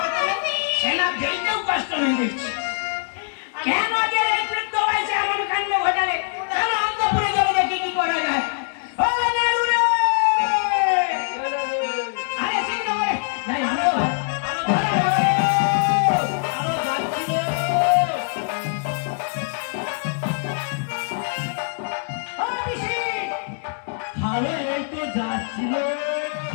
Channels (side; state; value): right; silent; digital silence